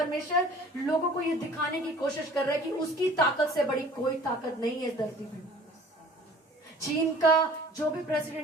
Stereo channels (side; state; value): both; normal; correlation 0.49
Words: लोगों को ये दिखाने की कोशिश कर रहा है कि उसकी ताकत से बड़ी कोई ताकत नहीं है इस धरती पे। चीन का जो भी